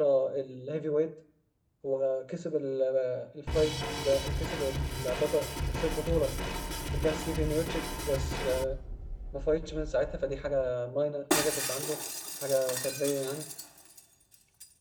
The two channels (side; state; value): both; identical; correlation 1.00